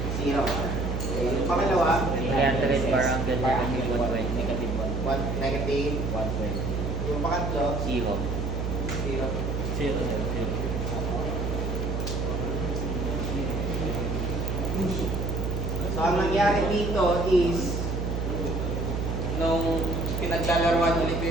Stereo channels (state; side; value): noise; right; hum, 2 dB below the sound